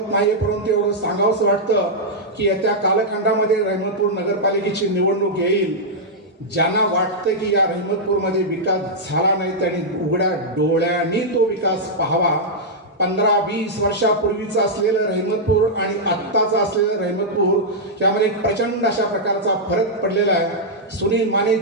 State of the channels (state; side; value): normal; both; correlation -0.07